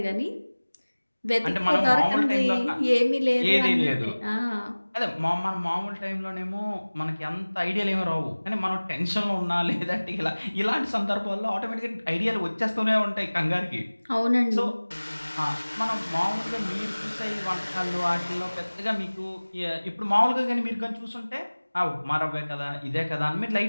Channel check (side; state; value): both; inverted; correlation -1.00